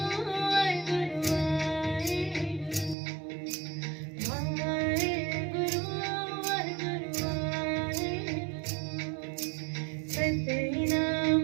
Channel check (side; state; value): left; drops out; at 3.0 s